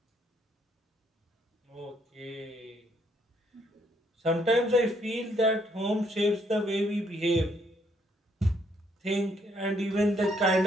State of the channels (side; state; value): both; normal; correlation 0.70